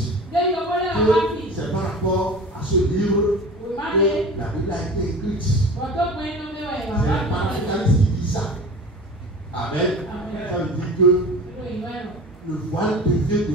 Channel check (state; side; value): normal; both; correlation 0.36